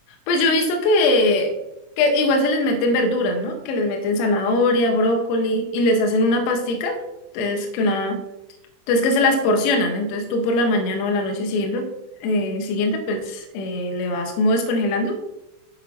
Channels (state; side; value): late; right; 25 ms